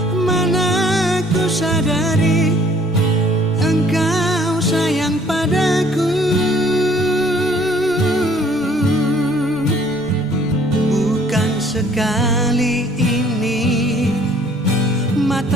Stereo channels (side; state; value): both; normal; correlation 0.58